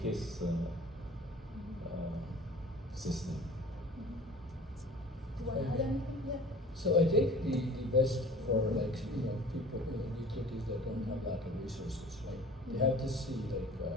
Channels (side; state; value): both; normal; correlation 0.45